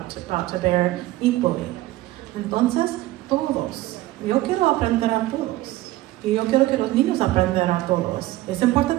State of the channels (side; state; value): left; quieter; 16.8 dB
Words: to bear equally. Entonces, todos. Yo quiero aprender a todos. Y yo quiero que los niños aprendan a todos. Es